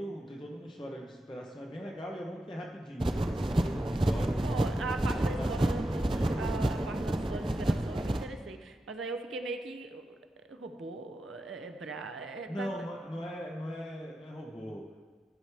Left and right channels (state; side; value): normal; both; correlation 0.89